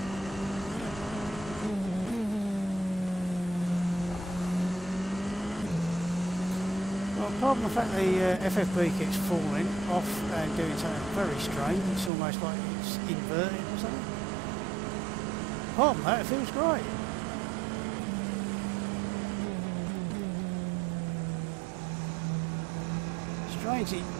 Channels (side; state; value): left; drops out; at 12.1 s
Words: apart from the fact the FFB keeps falling off and doing something very strange, it's almost like it's inverted or something. Apart from that, it feels great. Strange,